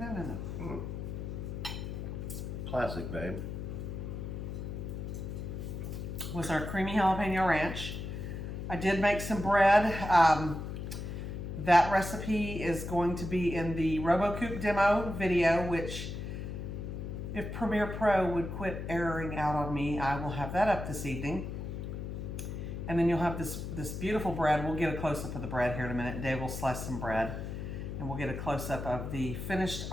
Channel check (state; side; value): noise; left; hum, 6 dB below the sound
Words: Classic, babe. Was our creamy jalapeno ranch. I did make some bread. That recipe is going to be in the RoboCoupe demo video, which if Premiere Pro would quit erroring out on me, I will have that up this evening. And then you'll have this beautiful bread. We'll get a close-up of the bread here in a minute. Dave will slice some bread and we'll get a close-up of the finished